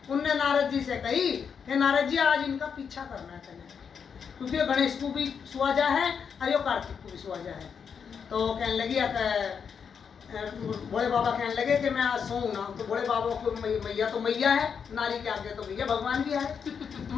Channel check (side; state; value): right; quieter; 6.7 dB